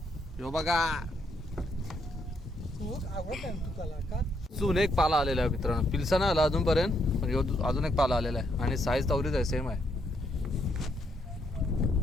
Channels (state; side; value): normal; both; correlation 0.75